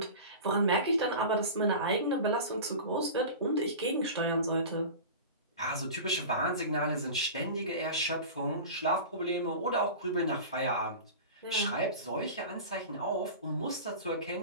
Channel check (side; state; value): both; inverted; correlation -0.33